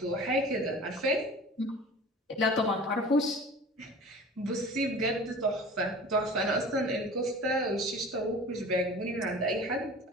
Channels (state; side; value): normal; both; correlation 0.40